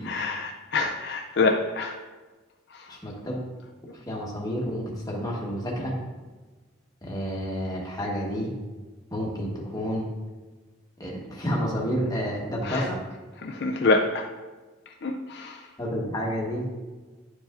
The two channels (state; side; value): normal; both; correlation 0.31